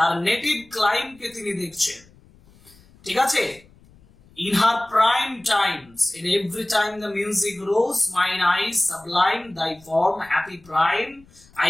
নেটিভ ক্লাইম কে তিনি দেখছেন, ঠিক আছে। In her prime times, in every time the music rose, mine eyes sublime thy form, happy prime,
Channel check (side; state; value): left; noise; rumble, 28 dB below the sound